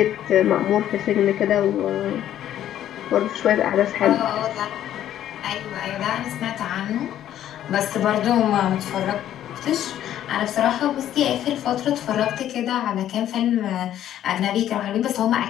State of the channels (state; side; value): quieter; right; 11.5 dB